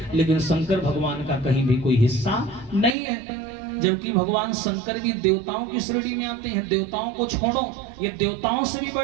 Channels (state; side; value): drops out; left; at 3.0 s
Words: लेकिन शंकर भगवान का कहीं भी कोई हिस्सा नहीं है। जबकि भगवान शंकर भी देवताओं की श्रेणी में आते हैं। देवताओं को छोड़ो, ये देवताओं से भी